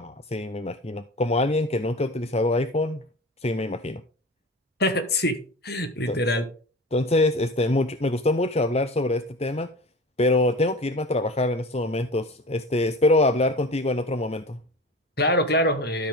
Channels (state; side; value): normal; both; correlation 0.34